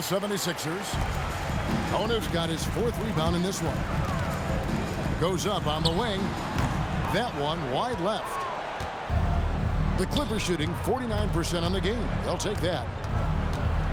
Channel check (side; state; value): both; identical; correlation 1.00